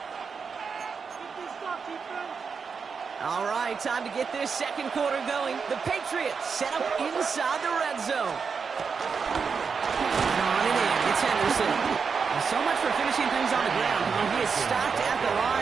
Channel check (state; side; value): quieter; left; 5.7 dB